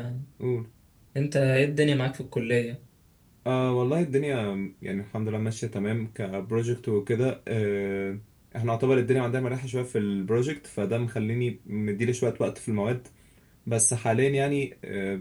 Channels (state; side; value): identical; both; correlation 1.00